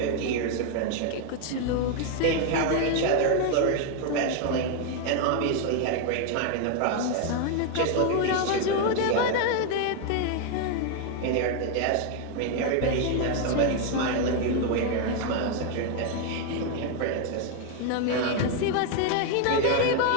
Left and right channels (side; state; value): both; different; correlation 0.01